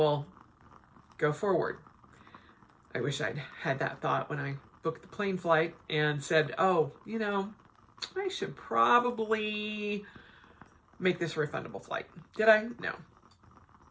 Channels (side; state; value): both; identical; correlation 1.00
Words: go forward. I wish I'd had that thought when I booked the plane flight and said, oh, you know, I should probably make this a refundable flight. Did I? No.